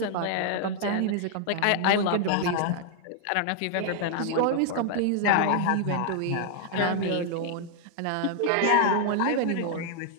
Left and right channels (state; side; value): different; both; correlation 0.00